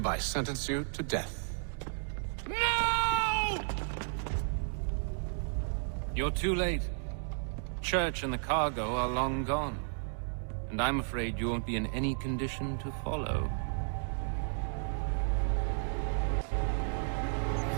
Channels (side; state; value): left; silent; digital silence